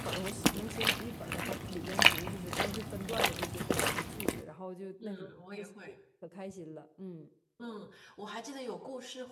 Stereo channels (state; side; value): identical; both; correlation 1.00